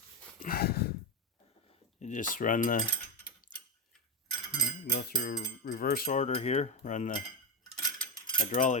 You just run go through reverse order here, run the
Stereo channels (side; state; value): both; normal; correlation 0.13